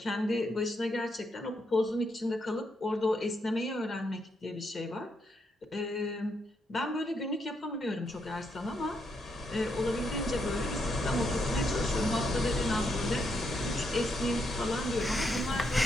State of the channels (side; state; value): both; normal; correlation 0.79